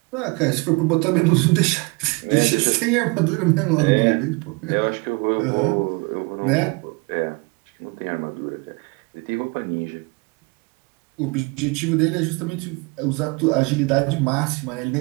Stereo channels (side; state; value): left; quieter; 28.4 dB